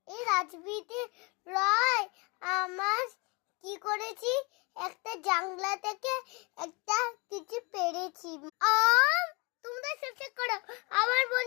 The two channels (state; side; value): quieter; right; 29.3 dB